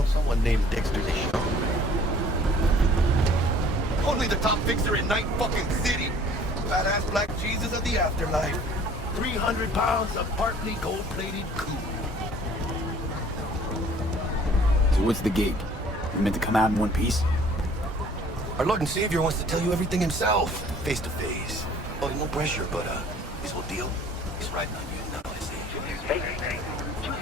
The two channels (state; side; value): normal; both; correlation 0.53